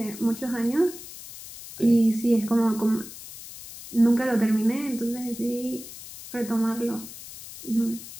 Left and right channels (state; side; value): noise; left; hiss, 14 dB below the sound